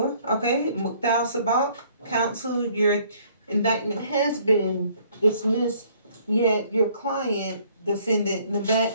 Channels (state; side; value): inverted; both; correlation -0.61